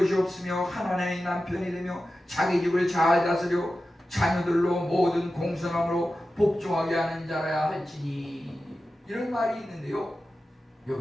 없으며 하나님의 남편이 되며 자기 집을 잘 다스려 자녀들로 모든 공손함으로 복종하게 하는 자라야 할지니, 이런 말이 있는데요.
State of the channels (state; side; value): normal; both; correlation 0.93